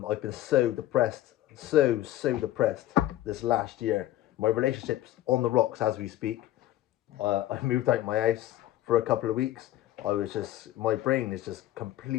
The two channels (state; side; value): quieter; right; 14.0 dB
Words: been so depressed, so depressed this last year. My relationship's on the rocks as we speak. I moved out my house for a couple of weeks. My brain is just